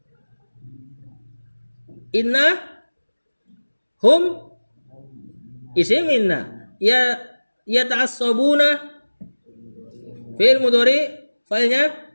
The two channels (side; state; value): both; inverted; correlation -1.00